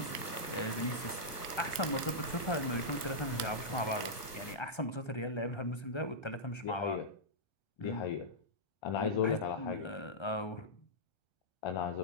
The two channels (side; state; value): right; late; 1.3 ms